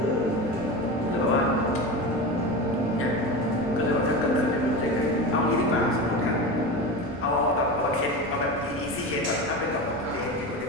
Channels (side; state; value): both; normal; correlation 0.25